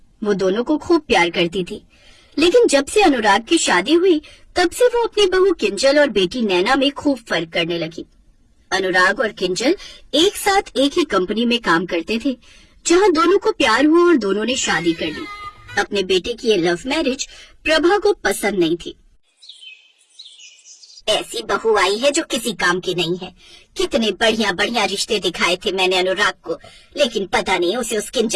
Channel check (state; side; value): identical; both; correlation 1.00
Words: वो दोनों को खूब प्यार करती थी। लेकिन जब से अनुराग की शादी हुई तब से वो अपनी बहू किंजल और बेटी नैना में खूब फर्क करने लगी। अनुराग और किंजल एक साथ एक ही कंपनी में काम करते थे, जहां दोनों को प्यार हुआ और दोनों ने शादी कर ली। अपने बेटे की ये लव मैरिज प्रभा को पसंद नहीं थी। ऐसी बहू आई है जो किसी काम की नहीं है। कितने बढ़िया बढ़िया रिश्ते दिखाए थे मैंने अनुराग को, लेकिन पता नहीं उसे उस